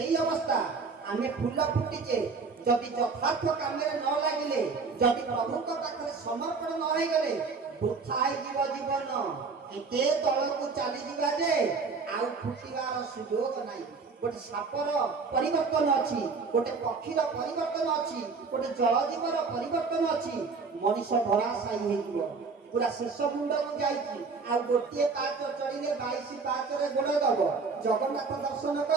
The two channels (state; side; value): quieter; left; 4.7 dB